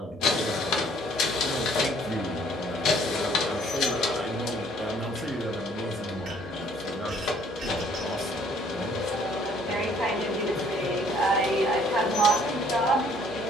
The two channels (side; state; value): both; normal; correlation 0.60